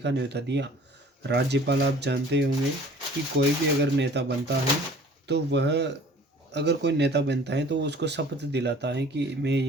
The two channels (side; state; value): both; normal; correlation 0.49